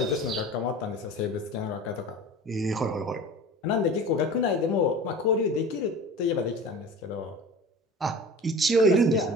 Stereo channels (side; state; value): both; normal; correlation 0.37